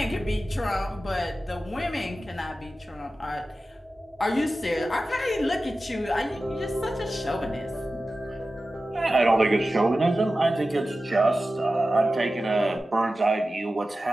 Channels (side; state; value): both; normal; correlation 0.94